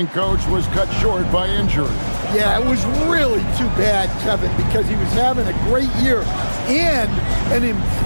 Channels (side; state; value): both; inverted; correlation -1.00